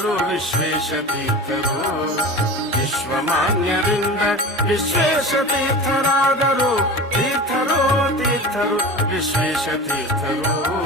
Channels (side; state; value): both; normal; correlation 0.33